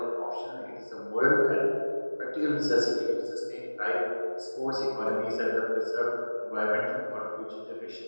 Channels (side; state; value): both; inverted; correlation -1.00